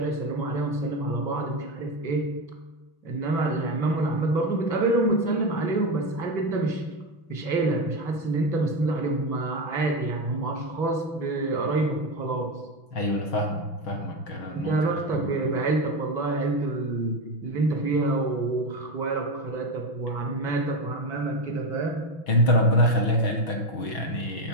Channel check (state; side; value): late; right; 6.1 ms